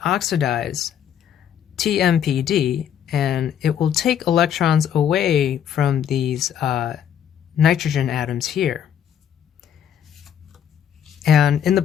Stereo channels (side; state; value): right; quieter; 9.2 dB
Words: oxidize TMPD, and it will take electrons away from these nitrogen atoms here. And in the